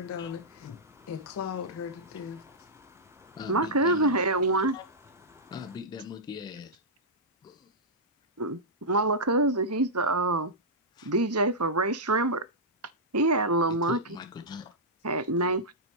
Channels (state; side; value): normal; both; correlation -0.10